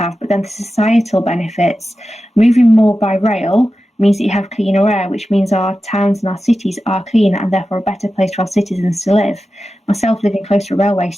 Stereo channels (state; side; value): normal; both; correlation 0.93